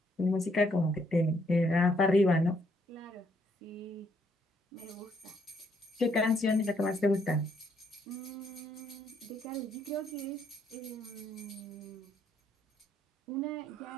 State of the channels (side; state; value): both; normal; correlation 0.71